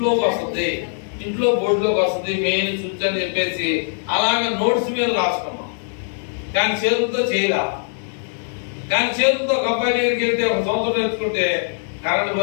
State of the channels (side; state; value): right; silent; 65 dB below the other